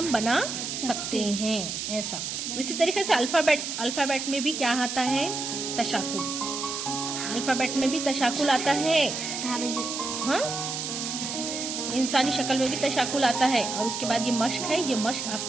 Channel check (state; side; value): noise; right; hiss, 4 dB below the sound